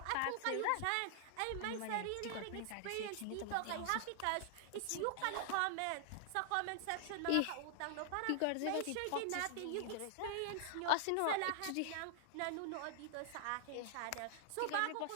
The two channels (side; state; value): both; different; correlation 0.00